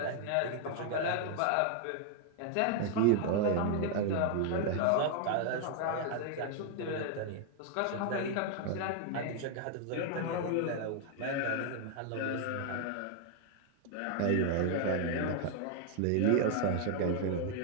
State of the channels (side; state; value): both; different; correlation 0.00